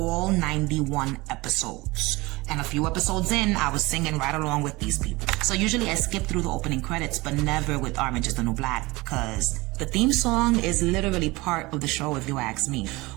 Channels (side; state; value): left; quieter; 22.3 dB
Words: 91 episodes. And a few episodes in, I was singing right along with these people. So usually I skip through the opening credits, but never with Orange is the New Black, because the theme song is literally part of the show, if you ask me.